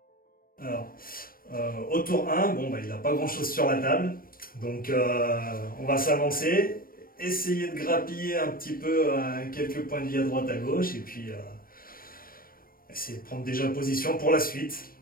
Alors, au tour 1, bon, il n'a pas grand chose sur la table. Donc on va s'avancer, essayer de grappiller un petit peu quelques points de vie à droite à gauche et puis essayer de prendre déjà position pour la suite.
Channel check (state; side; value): late; right; 0.42 ms